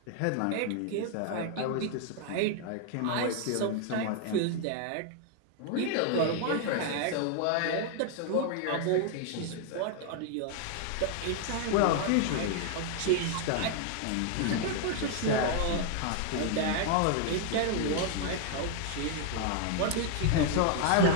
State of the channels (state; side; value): different; both; correlation 0.00